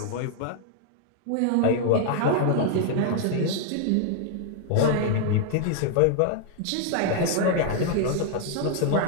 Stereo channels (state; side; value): different; both; correlation 0.00